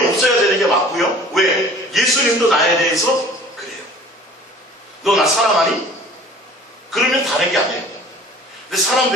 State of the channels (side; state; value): both; normal; correlation 0.47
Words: 없어야 되는 게 맞고요. 왜? 예수님도 나에 대해서 그래요. 너 나 사랑하니? 그러면 다른 게 아니에요. 근데